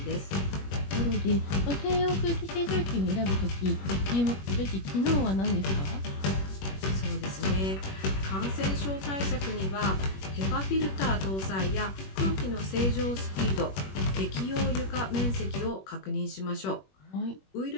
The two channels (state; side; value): late; right; 21 ms